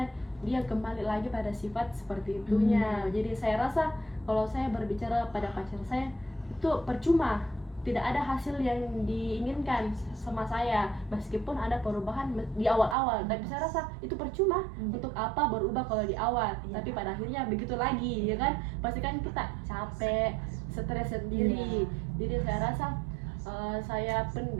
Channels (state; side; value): drops out; left; at 13.0 s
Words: dia kembali lagi pada sifat seperti itunya. Jadi saya rasa kalau saya berbicara pada pacar saya itu percuma, tidak ada hasil yang diinginkan sama saya, meskipun ada perubahan di awal-awal. Tapi saya rasa itu percuma. Untuk apa berubah kalau di awal? Tapi pada akhirnya begitu lagi, ya kan? Pasti kan kita capek, stres sendiri. Jadi saya rasa saya